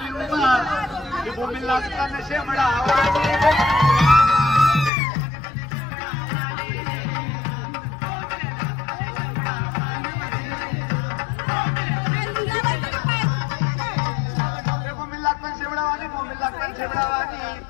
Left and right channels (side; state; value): right; drops out; at 4.9 s